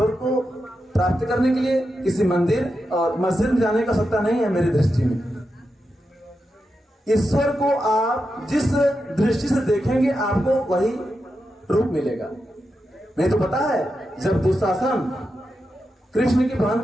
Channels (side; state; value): both; normal; correlation 0.88